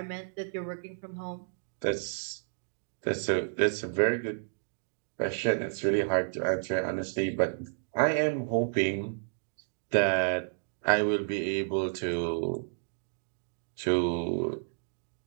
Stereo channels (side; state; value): left; silent; digital silence